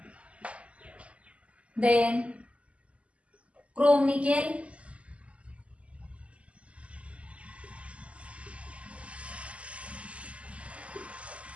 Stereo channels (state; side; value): late; left; 0.062 ms